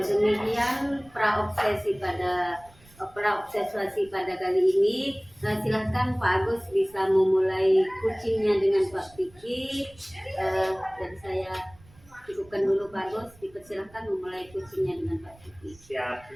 demikian praobsesi pada kali ini. Silahkan Pak Agus bisa memulai coachingnya dengan Pak Vicky. Dan saya cukupkan dulu Pak Agus, dipersilahkan memulai coachingnya dengan Pak Vicky. Siap,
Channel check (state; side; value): noise; right; rumble, 26 dB below the sound